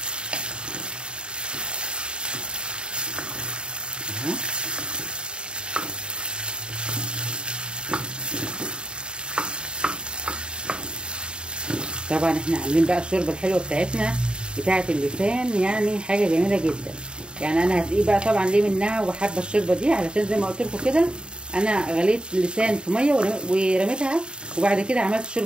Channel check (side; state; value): left; late; 0.051 ms